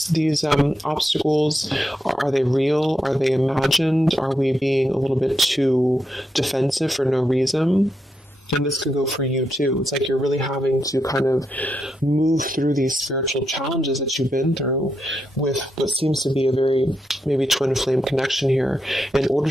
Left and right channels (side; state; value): both; normal; correlation 0.83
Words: obstacles? Are they real? Are they imagined? Are we being a little bit too defensive for no reason? And this could go for you too. It's like you're really having to kind of move through these spiritual challenges that you've been through with what seems to be a very maybe twin flame connection here, in order